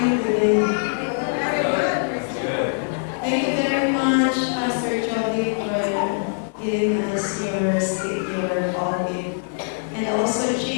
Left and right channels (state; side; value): silent; right; 64 dB below the other